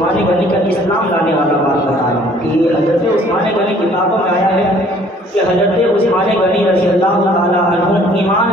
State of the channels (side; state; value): both; normal; correlation 0.57